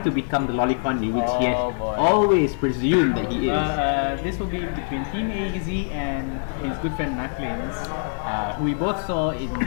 to become the Lolicon, which he has Oh, boy. always presumed that he is. This will be between Team AEZ and his good friend Knucklins, who we both saw in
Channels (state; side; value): silent; right; digital silence